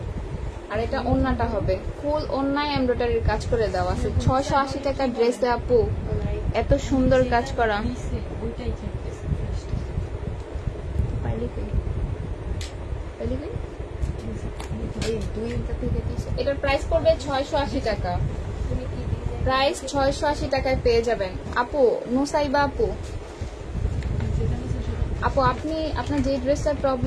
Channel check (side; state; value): both; identical; correlation 1.00